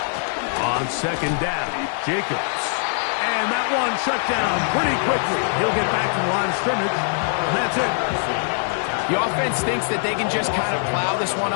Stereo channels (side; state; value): right; silent; digital silence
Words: On 2nd down, Jacobs. And that one shut down pretty quickly. He'll get back to the line of scrimmage. And that's it. The offense thinks that they can just kind of plow this one